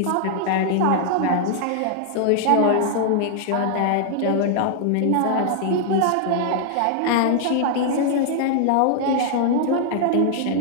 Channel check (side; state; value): both; different; correlation -0.01